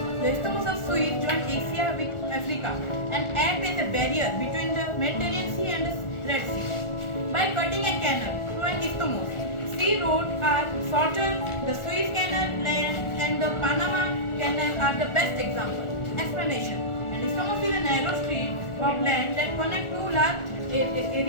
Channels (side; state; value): right; late; 1.4 ms